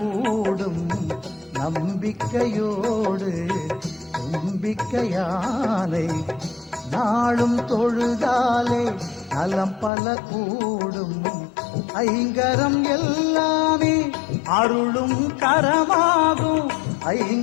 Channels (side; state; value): right; drops out; at 9.9 s